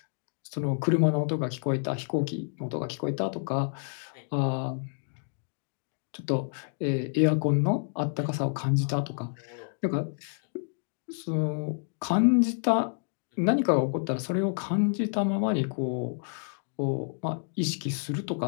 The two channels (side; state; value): right; silent; digital silence